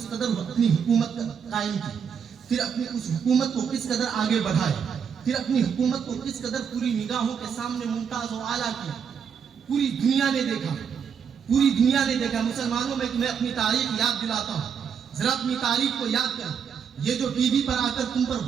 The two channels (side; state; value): left; quieter; 7.1 dB